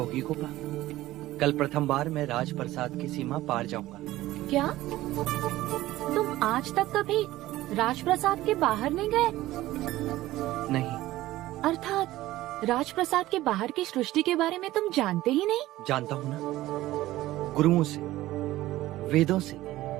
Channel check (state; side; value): quieter; left; 16.2 dB